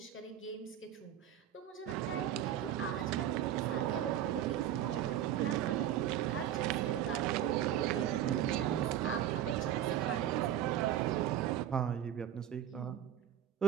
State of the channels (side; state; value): left; quieter; 11.1 dB